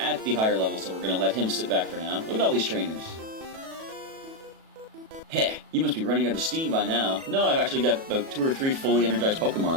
the higher level, so we're going to let him sit back for now. Look at all these trainers. Heh, you must be running out of steam by now. No, I've actually got about 2 or 3 fully energized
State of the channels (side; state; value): left; late; 37 ms